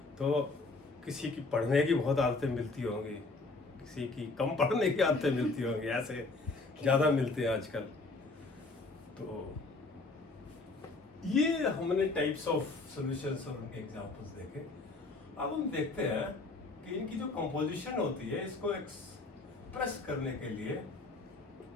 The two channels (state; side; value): quieter; right; 3.5 dB